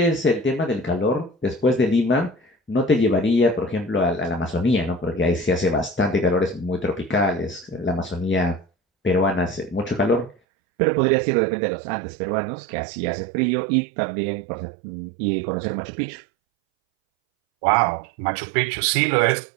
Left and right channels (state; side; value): drops out; left; at 10.4 s